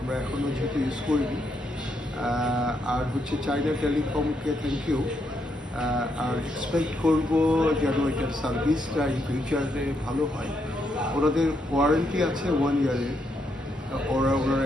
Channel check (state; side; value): normal; both; correlation 0.78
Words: এখনো যেহেতু ইউজ করিনি। আর হচ্ছে চাইনা টেলিকমকে থ্যাংক ইউ। আর এক্সপেক্ট করব যেন এটার সার্ভিসটা ইন ফিউচারে ভালো হয়। ওনাদের ওয়ারেন্টি আছে 1 ইয়ারের, ওনারা